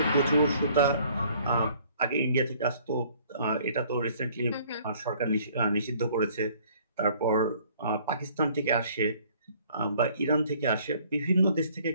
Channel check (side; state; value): both; inverted; correlation -0.58